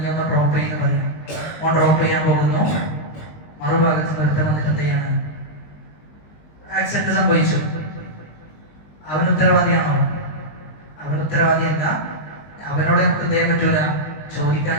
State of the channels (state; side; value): late; right; 20 ms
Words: ഒന്ന് ഡ്രോപ്പ് ചെയ്യുന്ന പറയും. ഓൻ ഡ്രോപ്പ് ചെയ്യാൻ പോകുന്നു, മറുഭാഗത്ത് നിർത്തം വന്നിട്ട് എന്ത് ചെയ്യാണ്, ആക്സിഡന്റ് സംഭവിച്ചു. അവൻ ഉത്തരവാദിയാണോ? അവൻ ഉത്തരവാദിയല്ല. അവനോട് നമുക്ക് എന്ത് ചെയ്യാൻ പറ്റൂല,